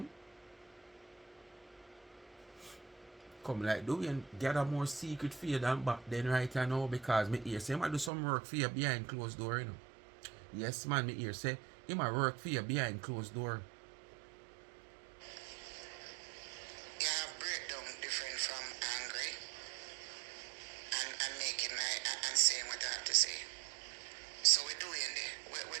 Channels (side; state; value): left; drops out; at 8.1 s